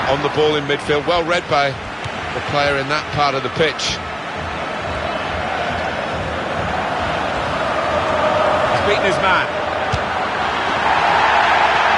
on the ball in midfield. Well read by the player in that part of the pitch. He's beaten his man.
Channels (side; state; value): both; identical; correlation 1.00